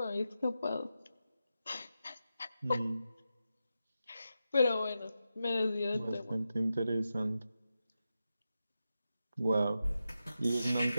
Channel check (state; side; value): inverted; both; correlation -0.89